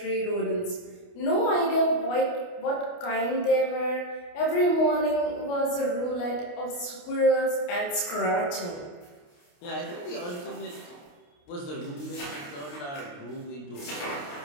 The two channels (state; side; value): late; right; 28 ms